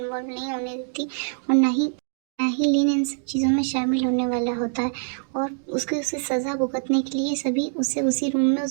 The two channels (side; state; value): left; silent; 62 dB below the other